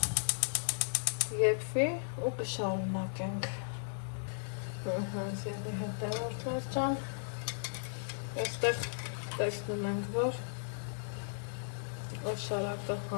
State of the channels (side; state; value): right; silent; digital silence